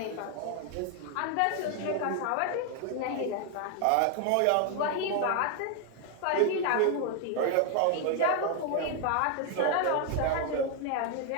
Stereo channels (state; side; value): different; both; correlation 0.00